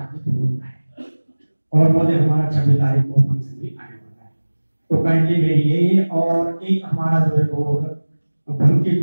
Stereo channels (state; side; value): inverted; both; correlation -1.00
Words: की जरूरत है, और मौजे हमारा 26 तारीख को फंक्शन भी आने वाला है। तो काइंडली मेरी यही है। और एक हमारा जो है वो भवन के